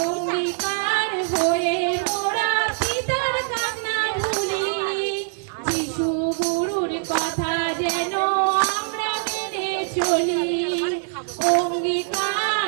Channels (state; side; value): silent; left; digital silence